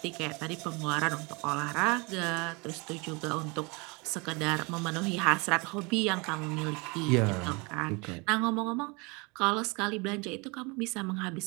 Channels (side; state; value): left; quieter; 28.6 dB